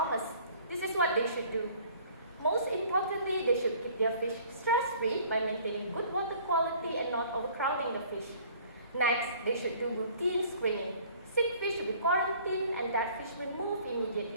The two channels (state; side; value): inverted; both; correlation -0.53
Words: This is what they should do. Most importantly, they should keep their fish stress-free by maintaining good water quality and not overcrowding the fish. Next, they should do routine screening. Sick fish should be quarantined and dead fish will move